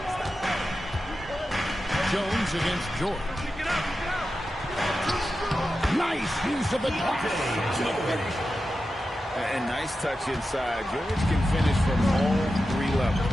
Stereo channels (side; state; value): both; normal; correlation 0.91